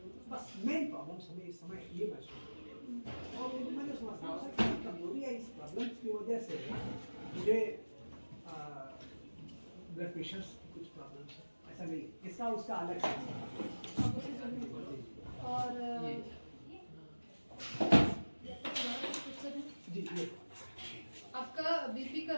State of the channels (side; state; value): both; inverted; correlation -1.00